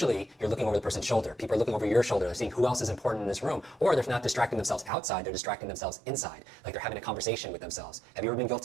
you're looking over the person's shoulder. People are looking over your shoulder, they're seeing who else is important in this room, or they're not distracting themselves outside, they're distracting themselves inside, like they're having a conversation with themselves. Have you ever been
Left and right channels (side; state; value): left; drops out; at 4.9 s